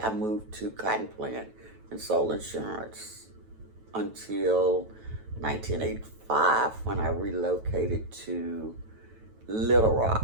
I moved to Cotton Plant and sold insurance until 1985 when I relocated to Little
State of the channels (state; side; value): late; left; 9.2 ms